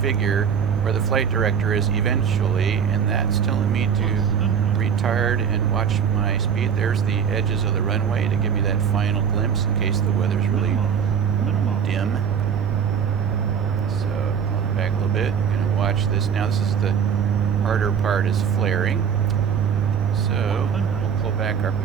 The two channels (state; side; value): quieter; left; 7.4 dB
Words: where the flight director is eventually, and that's telling me to retard and watch my speed. There's the edges of the runway to give me that final glimpse in case the weather's really dim. So I'll back a little bit. I'm going to watch this now. This is the harder part, is flaring. So we'll pull back our